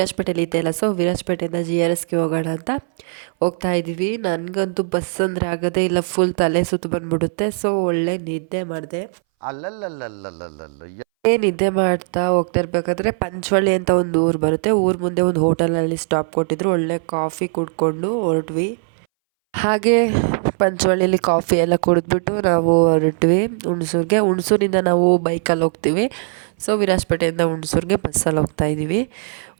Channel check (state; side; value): silent; left; 63 dB below the other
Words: ಇದ್ದೆ ಅಲ್ಲ, ಸೊ ವಿರಾಜಪೇಟೆಯಿಂದ GRSಗೆ ಹೋಗೋಣ ಅಂತ ಹೋಗ್ತಾ ಇದ್ದೀವಿ. ನನಗಂತೂ ಬಸ್ ಅಂದರೆ ಆಗೋದೇ ಇಲ್ಲ, ಫುಲ್ ತಲೆ ಸುತ್ತು ಬಂದ್ಬಿಡುತ್ತೆ. ಸೊ ಒಳ್ಳೆ ನಿದ್ದೆ ಮಾಡಿದೆ. ನಿದ್ದೆ ಮಾಡ್ತಾ ಹೋಗ್ತಾ ಇರಬೇಕಾದ್ರೆ ಪಂಚವಳ್ಳಿ ಅಂತ ಒಂದು ಊರು ಬರುತ್ತೆ. ಊರ ಮುಂದೆ ಒಂದು ಹೋಟೆಲಲ್ಲಿ ಸ್ಟಾಪ್ ಕೊಟ್ಟಿದ್ರು. ಒಳ್ಳೆ ಕಾಫಿ ಕುಡ್ಕೊಂಡು ಹೊರಟ್ವಿ. ಹಾಗೆ ಪಂಚವಳ್ಳಿಯಲ್ಲಿ ಕಾಫಿ ಎಲ್ಲ ಕುಡಿದ್ಬಿಟ್ಟು ನಾವು ಹೊರಟ್ವಿ ಹುಣಸೂರಿಗೆ. ಹುಣಸೂರಿಂದ ನಾವು ಬೈಕಲ್ಲಿ ಹೋಗ್ತೀವಿ. ಸೊ ವಿರಾಜಪೇಟೆಯಿಂದ ಹುಣಸೂರಿಗೆ ಬಸ್ಸಲ್ಲಿ ಹೋಗ್ತಾ ಇದ್ದೀವಿ.